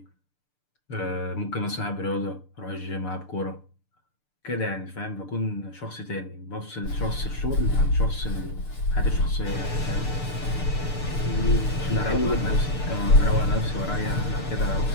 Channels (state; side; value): late; right; 6.8 ms